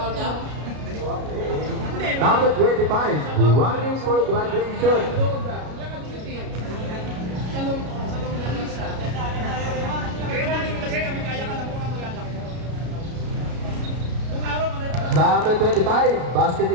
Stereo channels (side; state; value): left; late; 33 ms